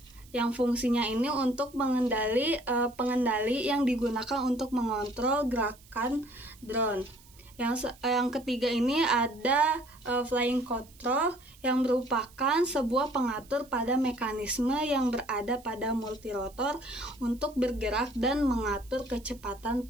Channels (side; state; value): right; noise; hiss, 25 dB below the sound